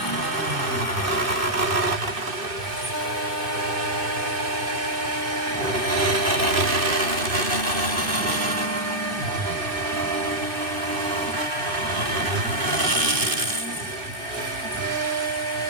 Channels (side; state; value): left; late; 2.6 ms